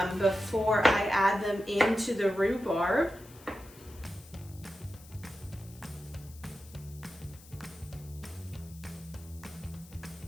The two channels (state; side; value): noise; left; hiss, 21 dB below the sound